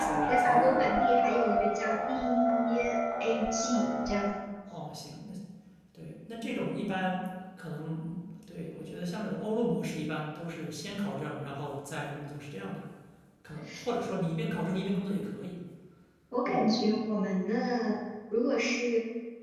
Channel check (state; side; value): identical; both; correlation 1.00